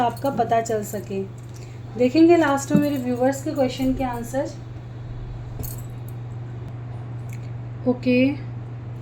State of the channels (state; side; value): identical; both; correlation 1.00